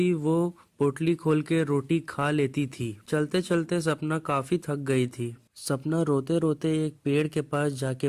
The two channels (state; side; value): identical; both; correlation 1.00